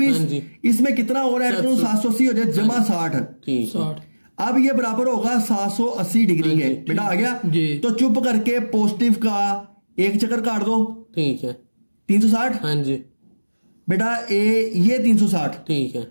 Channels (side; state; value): both; inverted; correlation -1.00